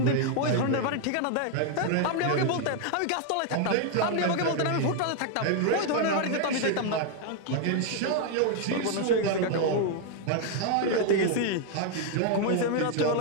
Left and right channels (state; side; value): different; both; correlation 0.00